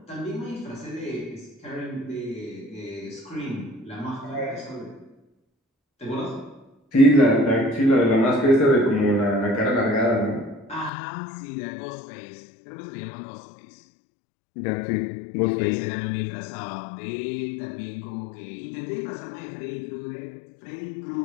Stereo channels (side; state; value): right; drops out; at 10.9 s